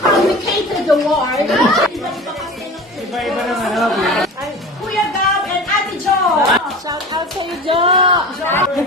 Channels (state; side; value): normal; both; correlation 0.35